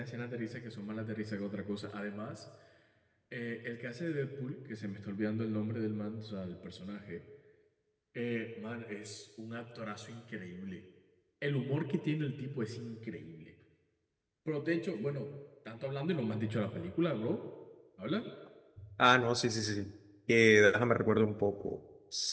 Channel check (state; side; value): identical; both; correlation 1.00